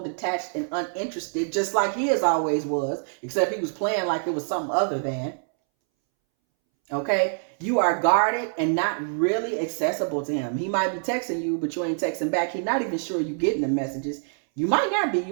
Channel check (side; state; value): left; silent; 61 dB below the other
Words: detached, and uninterested, just like his always was, except he was playing like it was something other than. Okay? You are guarded and not really accessible to him. He might be texting you, but you ain't texting back. He's not even sure you're getting the messages. You might not be. You